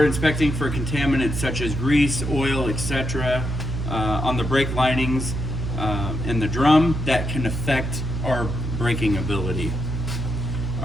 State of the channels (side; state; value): right; noise; hum, 4 dB below the sound